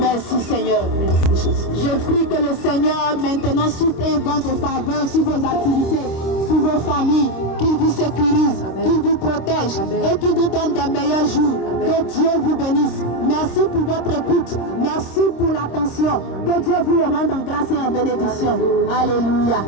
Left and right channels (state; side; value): late; right; 26 ms